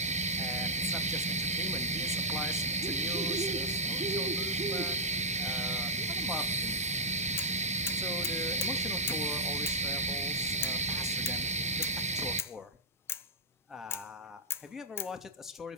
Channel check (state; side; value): normal; both; correlation -0.10